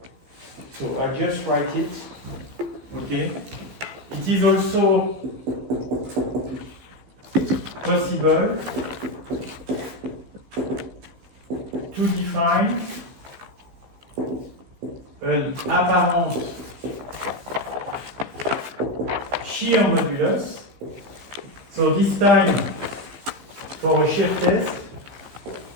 So I just write it, okay? It is also possible to define an apparent shear modulus. So this time, for a shear test,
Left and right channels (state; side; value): late; left; 15 ms